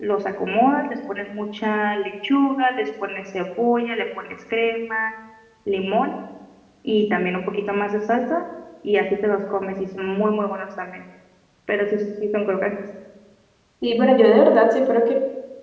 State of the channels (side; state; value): both; identical; correlation 1.00